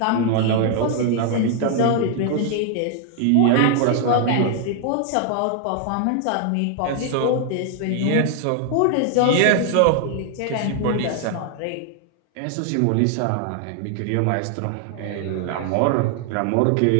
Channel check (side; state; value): both; different; correlation 0.00